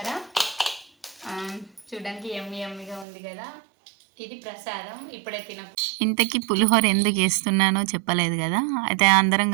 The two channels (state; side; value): drops out; left; at 3.1 s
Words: చూడడానికి ఎమ్మిగా ఉంది కదా. ఇది ప్రసాదం, ఇప్పుడే తిన. ఇంతకీ పులిహోర ఎందుకు వేస్తున్నానో చెప్పలేదు కదా. అయితే అందరం